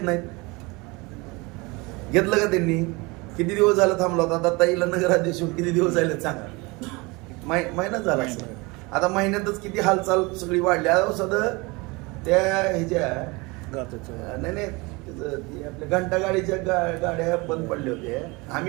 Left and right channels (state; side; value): quieter; left; 25.6 dB